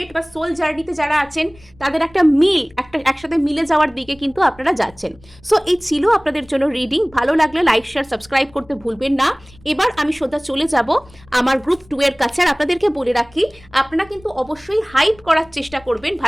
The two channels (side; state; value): left; noise; rumble, 26 dB below the sound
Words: বা সোল জার্নিতে যারা আছেন তাদের একটা মিল, একটা একসাথে মিলে যাওয়ার দিকে কিন্তু আপনারা যাচ্ছেন। সো এই ছিল আপনাদের জন্য রিডিং। ভালো লাগলে লাইক শেয়ার সাবস্ক্রাইব করতে ভুলবেন না। এবার আমি সোজা চলে যাব আমার গ্রুপ 2 এর কাছে। আর আপনাদেরকে বলে রাখি, আপনারা কিন্তু অবশ্যই হাইপ করার চেষ্টা করবেন